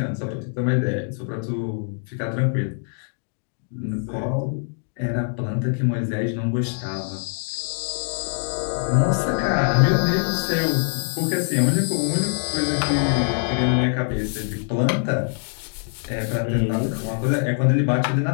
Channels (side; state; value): right; silent; 63 dB below the other